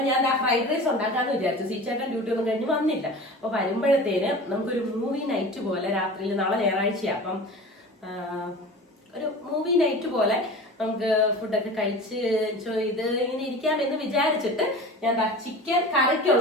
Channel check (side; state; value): both; normal; correlation 0.36